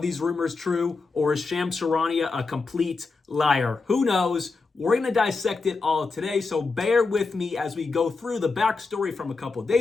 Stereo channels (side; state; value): right; quieter; 4.1 dB